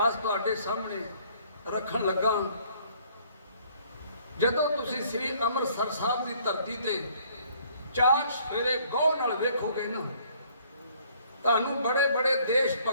ਤੁਹਾਡੇ ਸਾਹਮਣੇ ਰੱਖਣ ਲੱਗਾ। ਜਦੋਂ ਤੁਸੀਂ ਸ੍ਰੀ ਅੰਮ੍ਰਿਤਸਰ ਸਾਹਿਬ ਦੀ ਧਰਤੀ ਤੇ ਚਾਰ ਸਵੇਰੇ ਗੌਰ ਨਾਲ ਵੇਖੋਗੇ ਨਾ, ਤੁਹਾਨੂੰ ਬੜੇ ਬੜੇ ਦੇਸ਼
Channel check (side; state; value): both; inverted; correlation -0.60